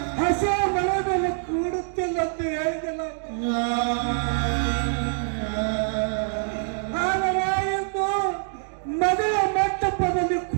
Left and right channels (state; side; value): silent; left; digital silence